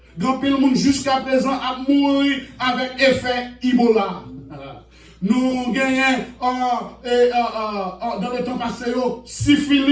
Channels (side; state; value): both; identical; correlation 1.00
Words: grand pile le monde jusqu'à présent a mouru avec effet Ebola. Nous gagnons dans le temps passé,